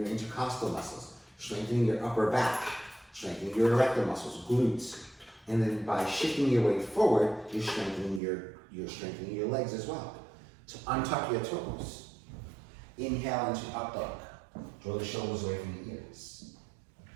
intercostal muscles, strengthening your upper back, strengthening your erector muscles, glutes. And then by shifting your weight forward, you're strengthening your legs as well. So untuck your toes. Inhale into up dog. Draw the shoulders away from the ears.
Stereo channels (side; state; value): left; drops out; at 8.2 s